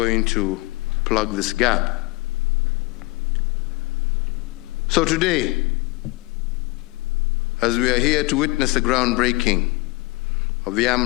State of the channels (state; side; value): quieter; right; 22.6 dB